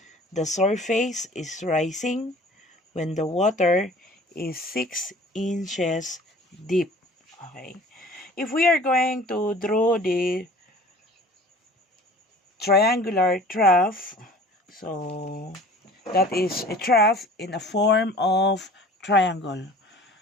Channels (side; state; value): both; normal; correlation 0.46